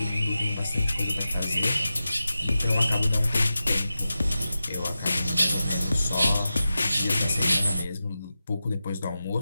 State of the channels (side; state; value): both; inverted; correlation -0.92